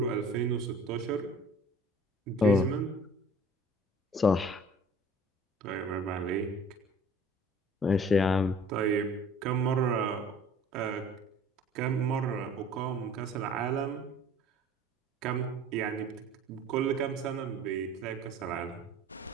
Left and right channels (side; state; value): both; normal; correlation 0.50